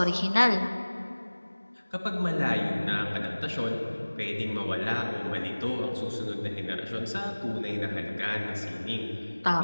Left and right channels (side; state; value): both; inverted; correlation -1.00